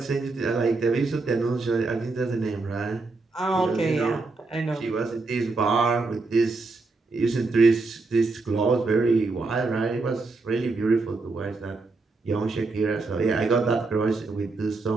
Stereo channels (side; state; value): left; quieter; 3.7 dB